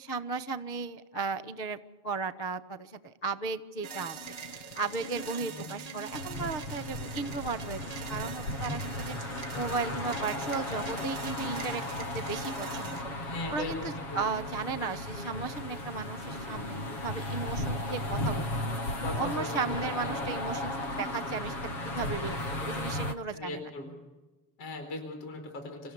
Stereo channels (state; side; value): late; right; 7.3 ms